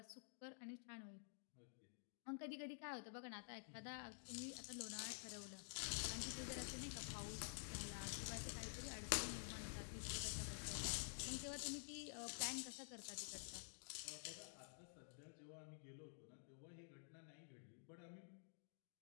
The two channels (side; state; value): right; silent; digital silence